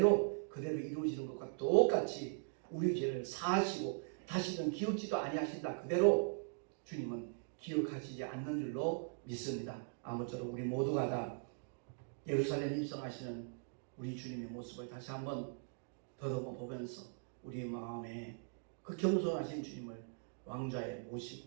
그대로 이루어지는 것과 똑같이 우리 죄를 사하시고 다시는 기억지도 아니하신다. 그대로 주님은 기억하시지 않는 줄로 믿습니다. 아무쪼록 우리 모두가 다 예루살렘 입성하시는 우리 주님의 모습을 다시 한번 더듬어 보면서 우리 마음에 그 겸손하신 주님을 왕좌에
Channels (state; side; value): silent; left; digital silence